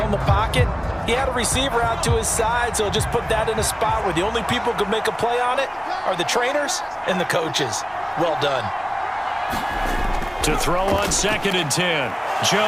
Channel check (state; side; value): identical; both; correlation 1.00